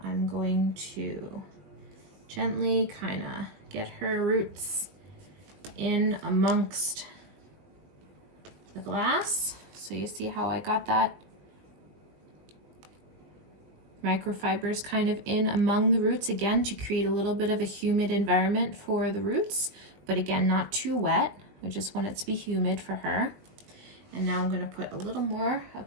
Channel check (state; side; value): late; left; 20 ms